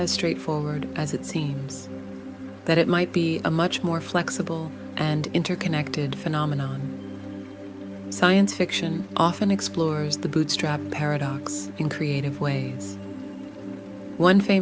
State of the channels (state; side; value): identical; both; correlation 1.00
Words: straightforward as it seems, that it might be a much more flexible and interconnected phenomenon. Science fiction often explores the bootstrap paradox in creative ways. One